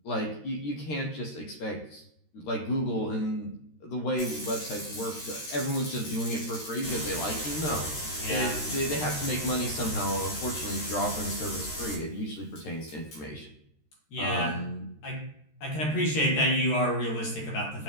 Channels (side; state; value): right; late; 13 ms